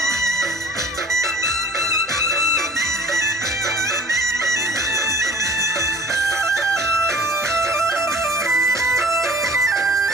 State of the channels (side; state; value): right; noise; hum, 28 dB below the sound